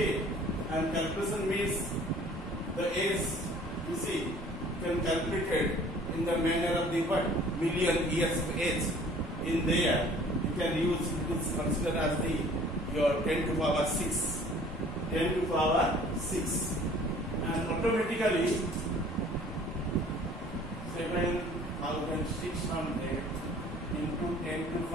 and calculation means the age. You see, can calculate it in the manner of the what million years of age. In there, you can use this consider as the your 10 to power 6, 10 to power 6, and automatically 7,600 into 10 to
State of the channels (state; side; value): normal; both; correlation 0.52